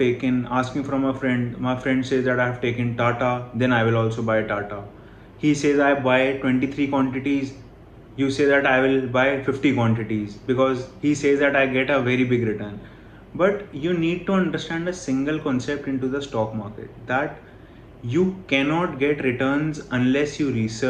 asking from a friend. My friend says that I have taken Tata, then I will also buy Tata. He says I buy 23 quantities, you say that I will buy 50 quantities because he says that I get a very big return. But you need to understand a single concept into the stock market, that you cannot get returns unless you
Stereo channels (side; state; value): both; identical; correlation 1.00